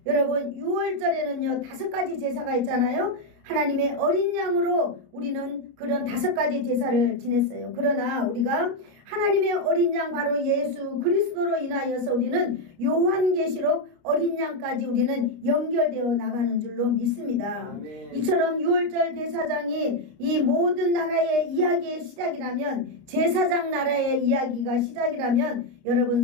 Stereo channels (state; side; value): late; left; 29 ms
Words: 여러분 6월절에는요 5가지 제사가 있잖아요. 하나님의 어린 양으로 우리는 그런 5가지 제사를 지냈어요. 그러나 우리가 하나님의 어린 양 바로 예수 그리스도로 인하여서 우리는 요한계시록 어린 양까지 우리는 연결되어 나가는 줄로 믿습니다. 아멘. 이처럼 6월절 대사장이 이 모든 나라의 이야기의 시작이라면, 제사장 나라의 이야기가 시작이라면 여러분